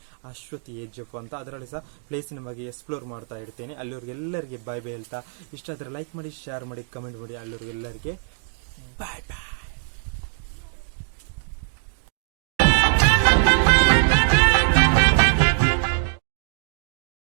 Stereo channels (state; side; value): silent; left; digital silence